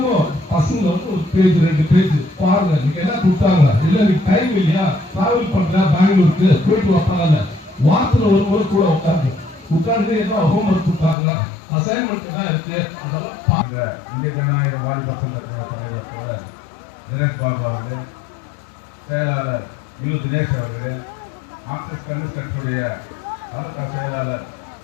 பசங்க வந்து ஒரு பேஜ் 2 பேஜ் பாருங்க. நீங்க என்ன கொடுத்தாங்க, இல்ல நீங்க டைம் இல்லையா, டிராவல் பண்ற பெங்களூருக்கு போயிட்டு வைப்பாங்க. வாரத்துல ஒரு முறை கூட உட்கார்ந்து என்ன ஹோம்ஒர்க் கொடுத்தாங்க, அசைன்மெண்ட் என்ன இருக்கு அதெல்லாம் பாருங்க. இந்திய ஜனநாயக வாலிப சங்கத்தின தலைவர் தினேஷ் பாபு அவர்களே, செயலாளர் தினேஷ் அவர்களே, மார்க்சிஸ்ட் கம்யூனிஸ்ட் கட்சியுடைய மாவட்ட செயலாளர்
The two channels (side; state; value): right; drops out; at 11.2 s